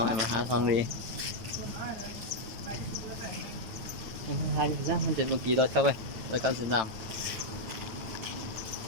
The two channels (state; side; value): late; left; 9.1 ms